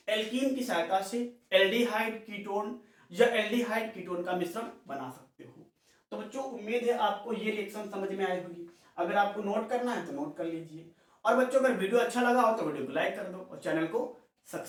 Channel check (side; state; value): both; identical; correlation 1.00